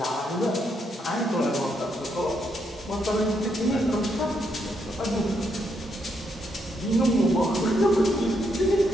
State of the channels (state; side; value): normal; both; correlation 0.77